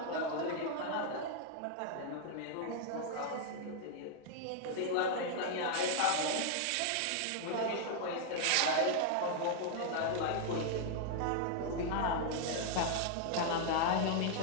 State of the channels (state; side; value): different; both; correlation 0.00